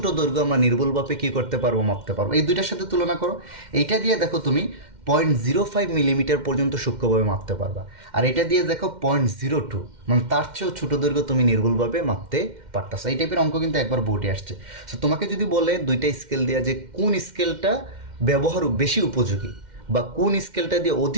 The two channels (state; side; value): late; left; 2.1 ms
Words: দৈর্ঘ্য আমরা নির্ভুলভাবে কী করতে পারবো, মাপতে পারবো। এই দুইটার সাথে তুলনা করো, এইটা দিয়ে দেখো তুমি 0.05 মিলিমিটার পর্যন্ত সূক্ষ্মভাবে মাপতে পারবা, আর এটা দিয়ে দেখো 0.02, মানে তার চেয়েও ছোটো দৈর্ঘ্য তুমি নির্ভুলভাবে মাপতে পারতাছো। এই টাইপের অঙ্ক কিন্তু একবার বোর্ডে আসছে। সো তোমাকে যদি বলে দুইটা স্কেল দেওয়া যে কোন স্কেলটা ব্যবহার বেশি উপযোগী বা কোন স্কেলটা দিয়ে